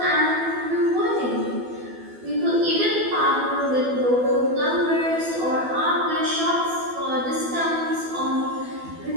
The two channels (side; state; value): left; late; 12 ms